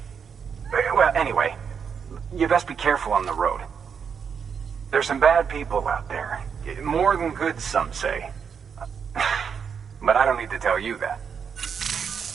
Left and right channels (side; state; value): left; quieter; 6.8 dB